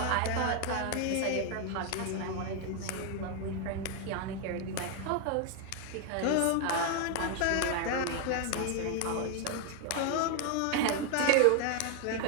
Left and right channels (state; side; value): different; both; correlation 0.01